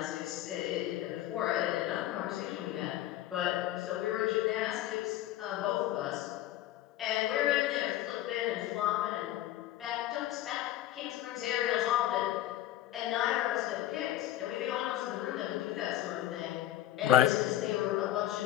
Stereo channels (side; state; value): right; quieter; 13.8 dB